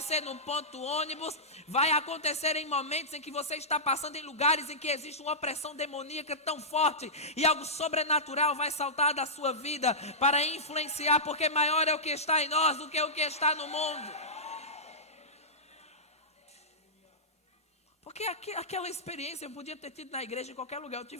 no ponto ônibus, vai acontecer em momentos em que você está passando em lugares em que existe uma opressão demoníaca tão forte e algo sobrenatural vai saltar da sua vida para influenciar, porque maior é o que está em nós do que o que está no mundo. Porque aquela experiência eu podia ter tido na igreja, em qualquer lugar. Eu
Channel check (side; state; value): both; normal; correlation -0.15